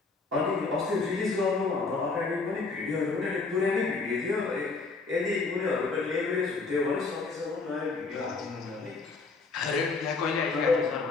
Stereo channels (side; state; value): right; quieter; 4.1 dB